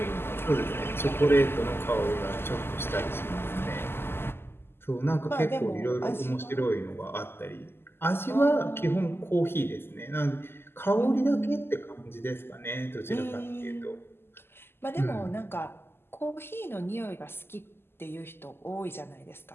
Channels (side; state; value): right; late; 0.11 ms